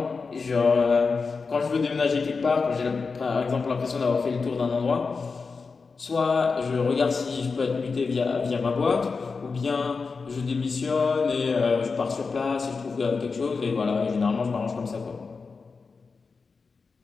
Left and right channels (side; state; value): right; quieter; 4.7 dB